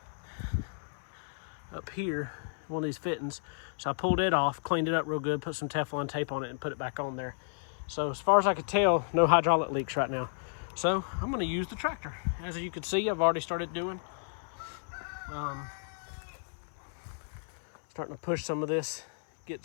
up here, one of these fittings. So I pulled it off, cleaned it up real good, put some Teflon tape on it, and put it back on there. So as far as I could tell, no hydraulic leaks right now. So I'm gonna use the tractor. As you can see, I've already started doing. Starting to push some of this, get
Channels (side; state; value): right; silent; 56 dB below the other